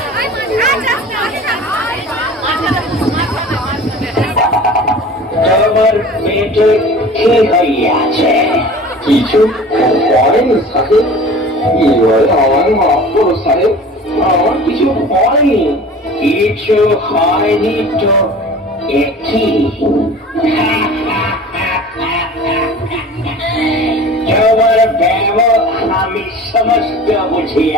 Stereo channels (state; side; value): normal; both; correlation 0.41